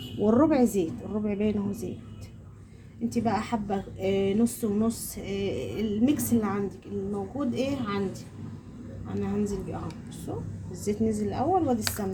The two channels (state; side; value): identical; both; correlation 1.00